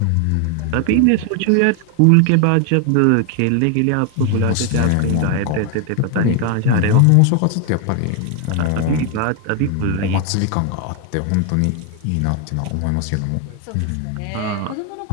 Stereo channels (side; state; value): both; different; correlation 0.01